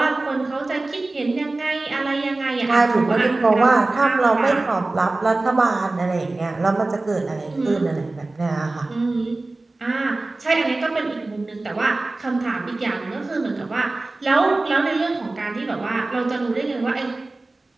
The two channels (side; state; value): left; quieter; 3.1 dB